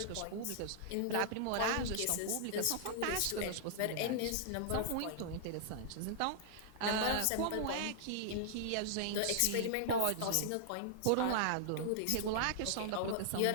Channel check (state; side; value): different; both; correlation -0.01